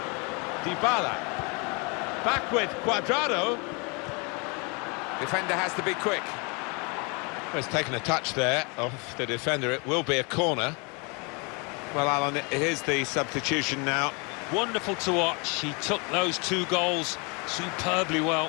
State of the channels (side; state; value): right; quieter; 31.5 dB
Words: Dybala. Back with Cuadrado. Defender has to be quick. Well, he's taken a touch there off the defender. It will be a corner. Well, Alan, here's the substitution now. Wonderful to watch. He took those 2 goals superbly well.